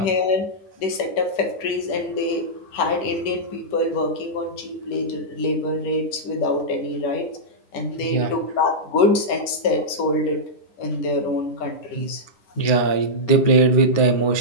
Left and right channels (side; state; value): right; late; 10 ms